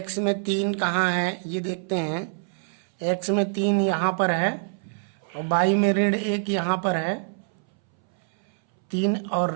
में 3 कहाँ है ये देखते हैं। x में 3 यहाँ पर है और y में ऋण 1 यहाँ पर है। 3 और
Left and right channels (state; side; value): silent; left; 62 dB below the other